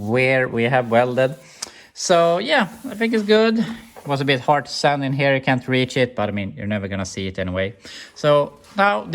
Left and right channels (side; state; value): both; identical; correlation 1.00